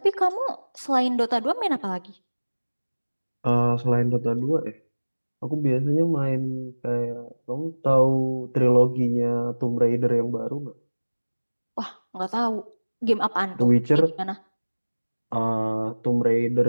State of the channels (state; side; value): inverted; both; correlation -1.00